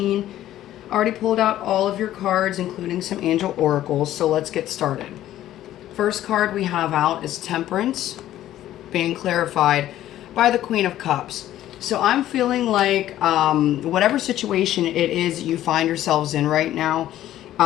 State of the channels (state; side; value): quieter; right; 13.1 dB